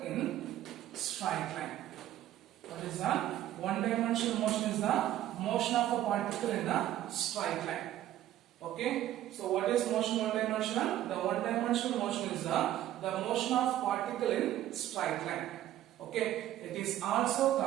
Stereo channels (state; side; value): quieter; left; 13.0 dB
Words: in straight line. What is that? One dimensional motion is the motion of a particle in a straight line. Okay. So what is motion one dimensional? The one dimensional motion is the motion of particle in straight line. Okay. It is also